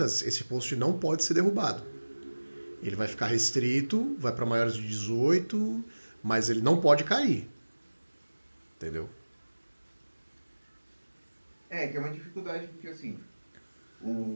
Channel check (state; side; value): inverted; both; correlation -1.00